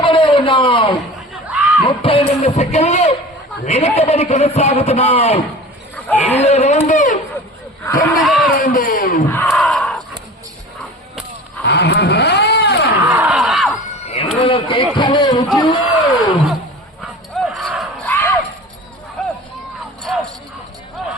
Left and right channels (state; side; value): normal; both; correlation 0.38